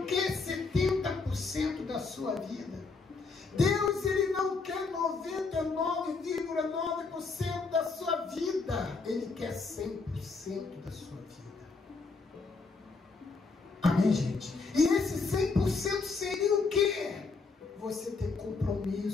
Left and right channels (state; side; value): quieter; right; 4.2 dB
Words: quer 70% da sua vida. Deus, Ele não quer 99,9% da sua vida. Ele quer 100% da sua vida. Amém, gente? E esse 100% seria o quê? Você ter